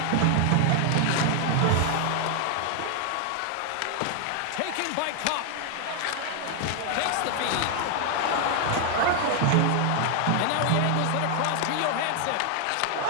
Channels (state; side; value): different; both; correlation 0.00